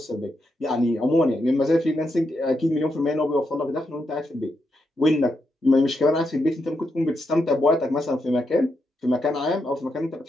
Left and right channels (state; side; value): normal; both; correlation 0.82